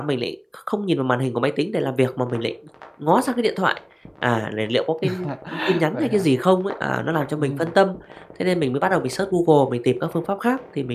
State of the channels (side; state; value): both; identical; correlation 1.00